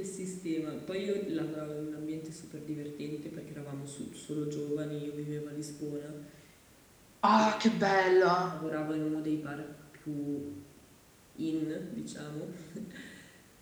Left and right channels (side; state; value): both; identical; correlation 1.00